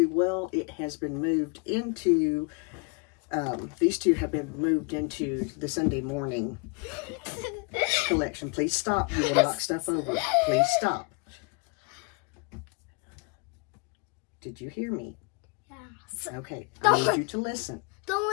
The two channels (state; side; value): quieter; right; 31.9 dB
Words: well. It has been moved into, these two have been moved into the Sunday morning collection. Please stop. You will knock stuff over. Please stop. Did you hear me? Yes. Okay, I need you to listen. Don't